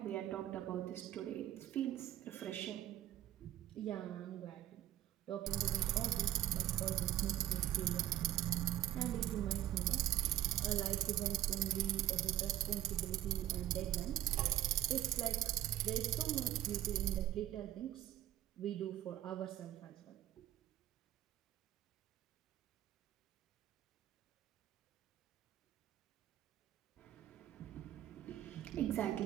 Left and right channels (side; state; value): left; quieter; 13.0 dB